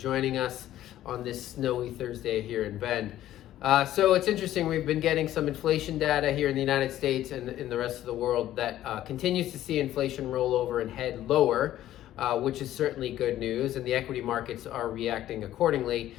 us on this snowy Thursday here in Bend. So it's interesting, we've been getting some inflation data here in the United States and in the rest of the world that continues to see inflation roll over and head lower, which is certainly good news, and the equity markets are reacting accordingly.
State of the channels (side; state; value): right; quieter; 13.1 dB